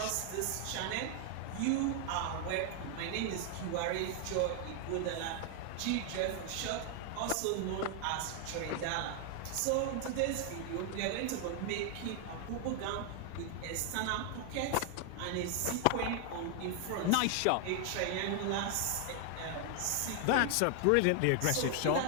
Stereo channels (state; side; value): different; both; correlation 0.00